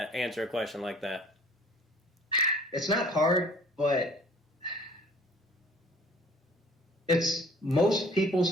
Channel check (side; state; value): both; normal; correlation 0.52